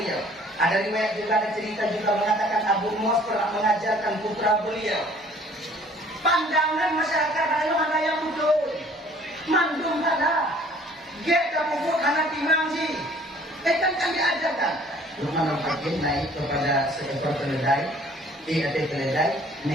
Ada riwayat juga, ada cerita juga mengatakan Abu Muas pernah mengajarkan putra beliau. Pandangan masyarakat lalu mana yang betul. Mandung salah. Get tak pupuk anak timang sih. Kan diajarkan. Luqmanul Hakim naik kepada seekor keledai. Ada keledai.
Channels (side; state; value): both; normal; correlation 0.55